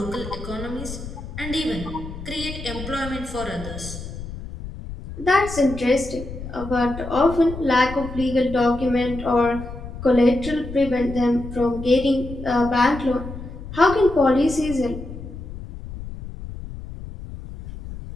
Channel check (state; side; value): noise; left; rumble, 11 dB below the sound